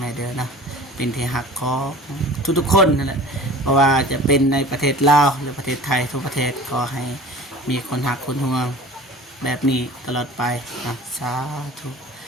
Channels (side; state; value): both; normal; correlation 0.42